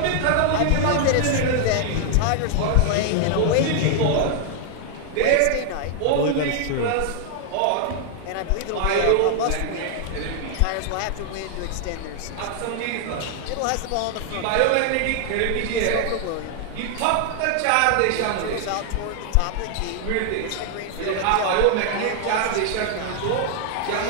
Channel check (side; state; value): both; different; correlation 0.00